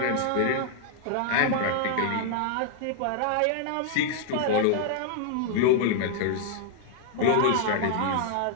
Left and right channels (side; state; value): both; different; correlation -0.01